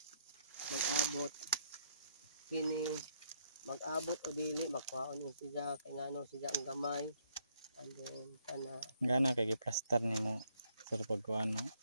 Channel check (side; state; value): both; inverted; correlation -0.70